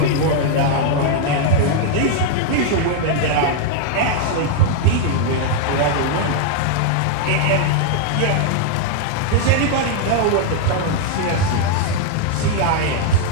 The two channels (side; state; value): both; different; correlation 0.00